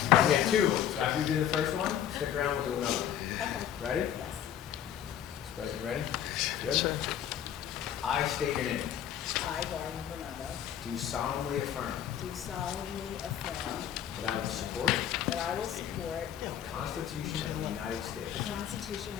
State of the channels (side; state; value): right; quieter; 10.2 dB